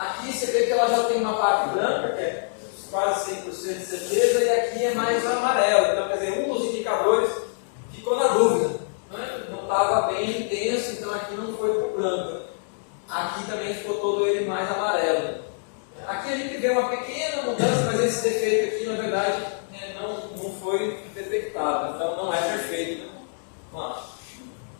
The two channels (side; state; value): right; silent; digital silence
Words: você vê que ela já tem uma parte branca, que é quase 100% de certeza, e aqui é mais amarelo. Então, quer dizer, um dos indicadores ficou na dúvida, né? Não estava bem intenso, então aqui não foi para o branco. Aqui também ficou todo ele mais amarelo. Aqui a gente vê uma pequena mudança, mas esse defeito aqui, na verdade, não foi detectado, então não é perfeito, né?